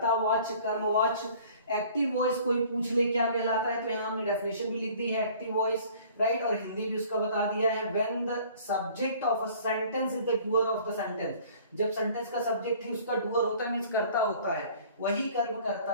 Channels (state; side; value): inverted; both; correlation -0.51